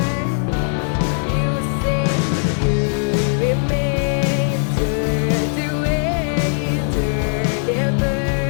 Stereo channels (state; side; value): silent; right; digital silence